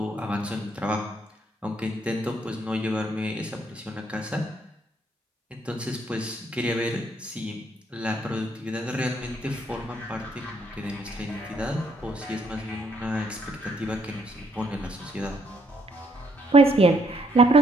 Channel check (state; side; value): normal; both; correlation 0.71